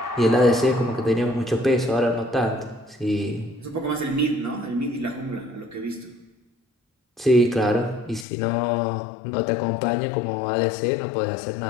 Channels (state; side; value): drops out; right; at 8.2 s